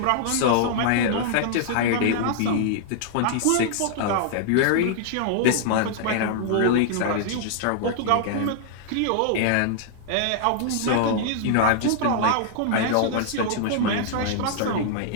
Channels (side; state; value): both; different; correlation -0.01